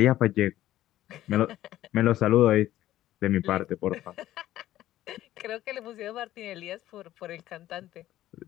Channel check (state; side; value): quieter; right; 14.0 dB